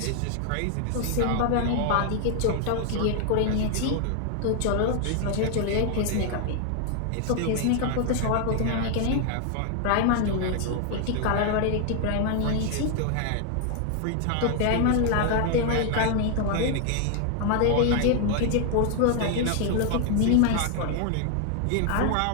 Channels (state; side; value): different; both; correlation 0.00